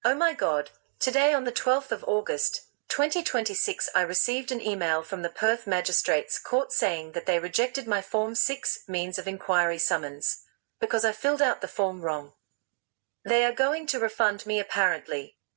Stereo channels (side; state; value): left; silent; digital silence